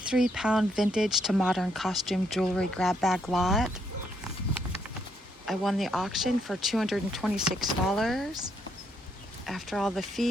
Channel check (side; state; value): both; normal; correlation 0.74